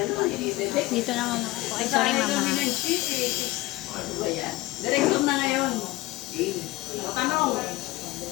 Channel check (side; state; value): right; quieter; 18.8 dB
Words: naman ako. Ay, sorry mama. Ano ba yan? Direksyon na ngayon. Tanong.